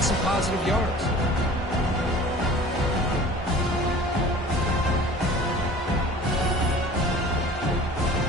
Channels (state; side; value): normal; both; correlation 0.44